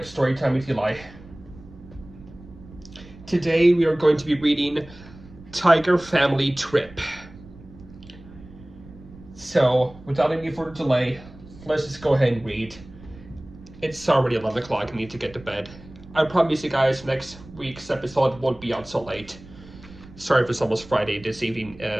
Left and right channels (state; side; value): noise; right; rumble, 20 dB below the sound